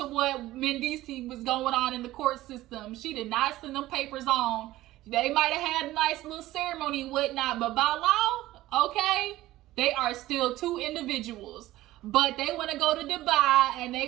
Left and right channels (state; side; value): quieter; left; 16.2 dB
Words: what Mendices was going on in the court system. She did not send them papers on. They might have had a nice little ceremony and whatnot, but by law, okay, they are still two individuals. But they want to go to Dubai and